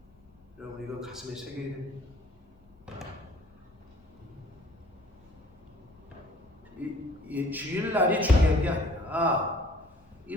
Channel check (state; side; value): normal; both; correlation 0.54